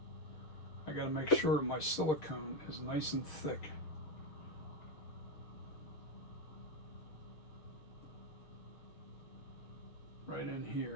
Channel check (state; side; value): late; right; 6.5 ms